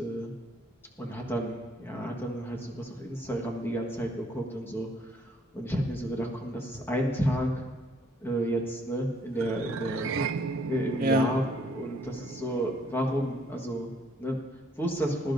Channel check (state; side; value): normal; both; correlation 0.65